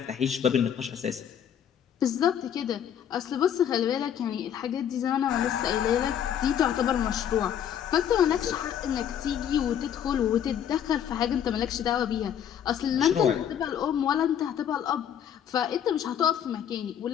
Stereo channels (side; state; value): right; quieter; 9.2 dB